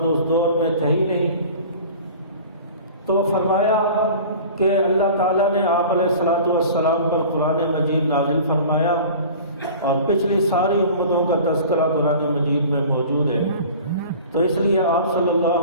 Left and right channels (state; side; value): inverted; both; correlation -0.41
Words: تو اس دور میں تھے ہی نہیں، تو فرمایا کہ اللہ تعالیٰ نے آپ علیہ الصلوۃ والسلام پر قرآن مجید نازل فرمایا، اور پچھلی ساری امتوں کا تذکرہ قرآن مجید میں موجود ہے۔ تو اس لیے آپ صلی